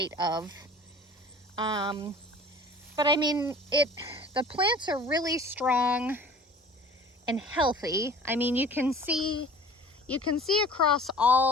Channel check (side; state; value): both; normal; correlation 0.45